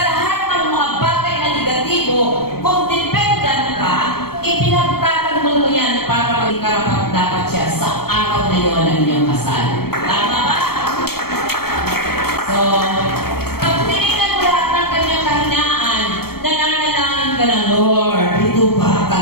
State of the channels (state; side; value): late; right; 0.95 ms